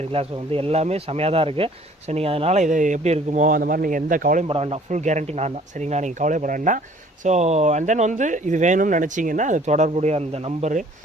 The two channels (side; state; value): both; normal; correlation 0.55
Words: ஸோ வந்து எல்லாமே செமையாக தான் இருக்குது. ஸோ நீங்கள் அதனால் இது எப்படி இருக்குமோ அந்த மாதிரி நீங்கள் எந்த கவலையும் பட வேண்டாம், ஃபுல் கேரண்டி நான் தான். சரிங்களா, நீங்கள் கவலைப்பட வேண்டாம். ஸோ அண்ட் தென் வந்து இது வேணும்னு நினச்சிங்கன்னா அது தொடர்புடைய அந்த நம்பரு,